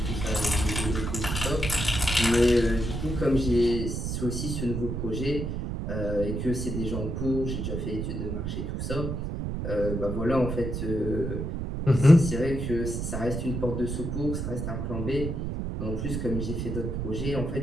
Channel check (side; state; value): right; noise; rumble, 3 dB below the sound